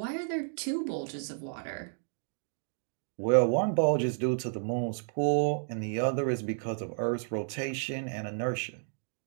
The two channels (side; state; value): left; silent; digital silence